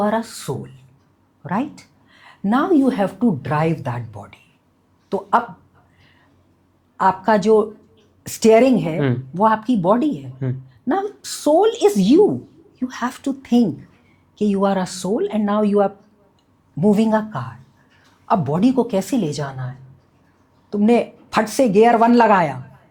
a soul, right. Now you have to drive that body. तो अब आपका जो स्टेयरिंग है वो आपकी बॉडी है। Now soul is you, you have to think कि you are a soul and now you are moving a car. अब बॉडी को कैसे ले जाना है? तुमने फट से गियर 1 लगाया,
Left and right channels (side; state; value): both; identical; correlation 1.00